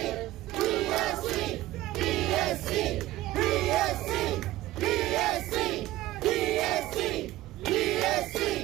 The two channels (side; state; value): left; quieter; 16.1 dB